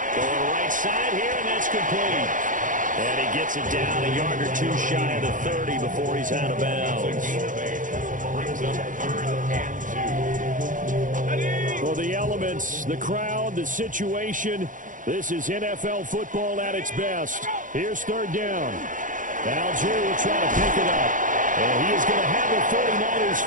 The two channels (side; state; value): left; late; 0.38 ms